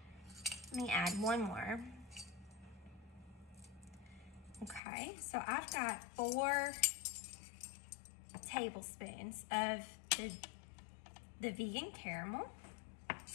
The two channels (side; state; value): right; drops out; at 4.8 s